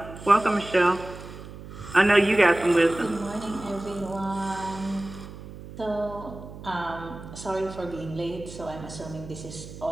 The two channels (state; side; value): noise; right; hum, 14 dB below the sound